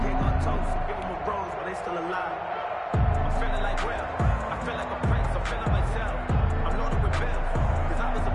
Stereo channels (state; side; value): identical; both; correlation 1.00